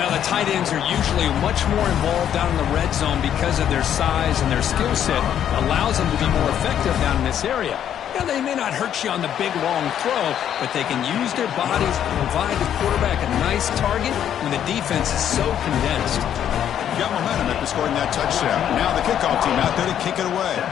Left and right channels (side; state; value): right; quieter; 9.9 dB